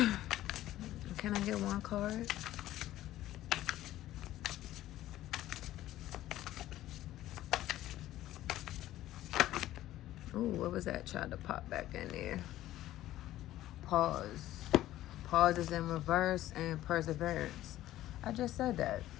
I get one card? Oh, what was that? Tried to pop back in there. Pause. Pause is in reverse, and perseverance. I just said that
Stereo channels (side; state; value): right; quieter; 14.3 dB